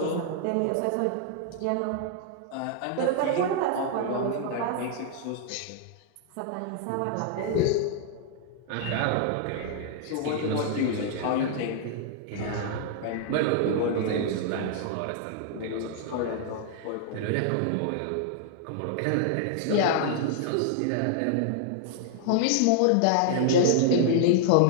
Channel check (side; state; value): both; different; correlation -0.01